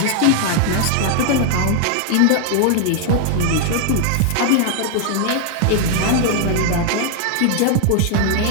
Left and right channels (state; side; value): different; both; correlation 0.00